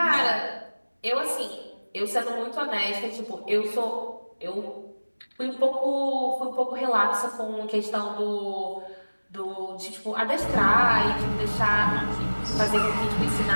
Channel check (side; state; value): both; inverted; correlation -1.00